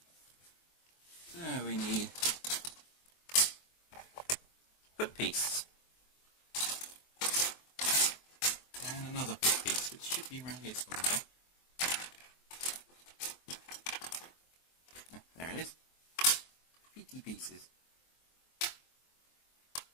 So we need foot piece and another foot piece, which should be around here somewhere. There it is. Feety pieces.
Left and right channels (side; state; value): right; late; 23 ms